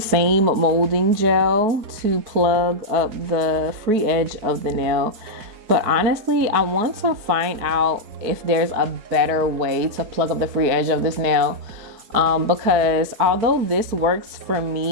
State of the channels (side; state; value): left; late; 4.6 ms